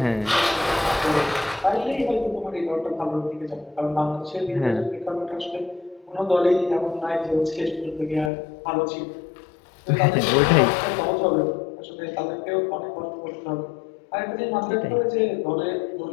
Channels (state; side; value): drops out; right; at 8.3 s